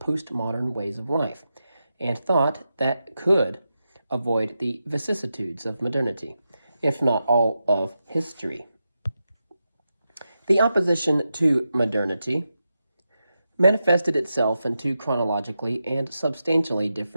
ways of life, and thought that could avoid the vicissitudes of modernity, if not all of history. The opposition to modernity manifested itself in two chronologically and substantially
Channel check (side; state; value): both; inverted; correlation -0.89